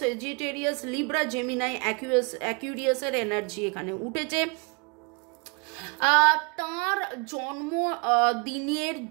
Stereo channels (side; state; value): left; quieter; 32.9 dB